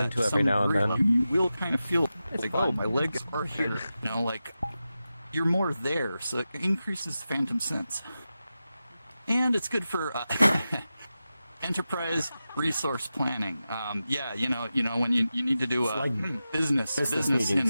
into to every some now and degree. then. You will kind of feel like, oh, my legs are here. You know, like, you're more there, so it increases phantom sense. And it's good for enterprise resource planning. Yeah, you know, when you need to do It's like business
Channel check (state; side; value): inverted; both; correlation -0.92